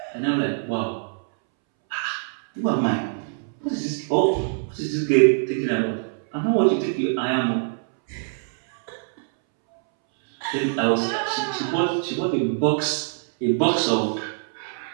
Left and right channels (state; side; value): silent; left; 63 dB below the other